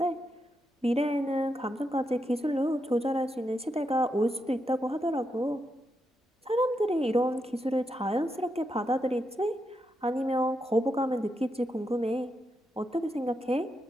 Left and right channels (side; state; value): both; normal; correlation 0.84